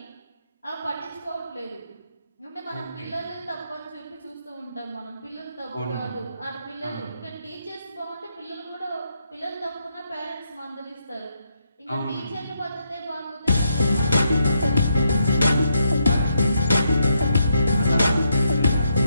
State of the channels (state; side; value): inverted; both; correlation -0.79